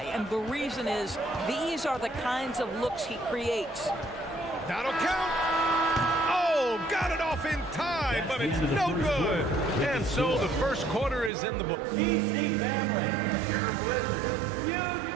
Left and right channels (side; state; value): left; drops out; at 11.3 s